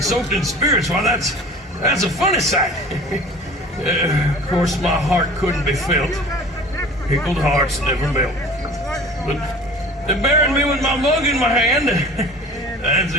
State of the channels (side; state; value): both; normal; correlation 0.42